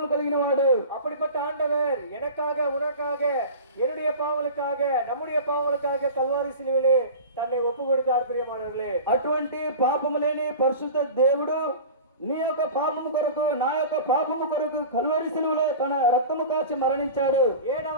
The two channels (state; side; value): inverted; both; correlation -0.35